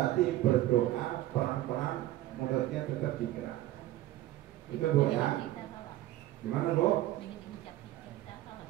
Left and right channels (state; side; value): quieter; left; 15.1 dB